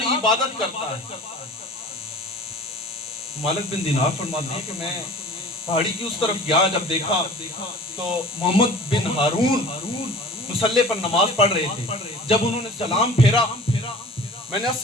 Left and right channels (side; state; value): both; normal; correlation 0.43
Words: عبادت کرتا ہے. مالک بن دینار فرماتے ہیں کہ میں پہاڑی کی اس طرف گیا. جب دیکھا تو محمد بن ہارون مصلی پر نماز پڑھ رہے تھے. جب انہوں نے سلام پھیرا، میں نے